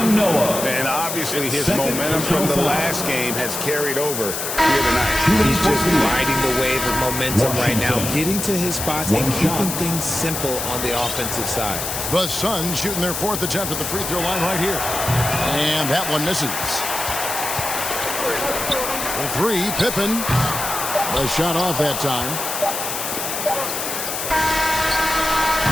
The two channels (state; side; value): noise; left; hiss, 4 dB below the sound